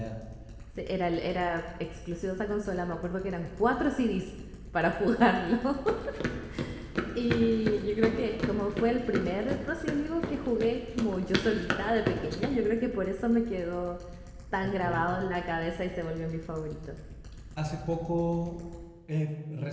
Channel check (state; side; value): identical; both; correlation 1.00